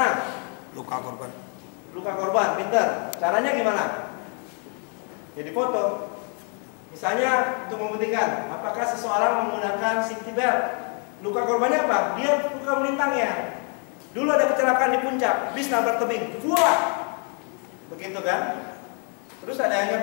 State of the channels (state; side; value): quieter; right; 39.8 dB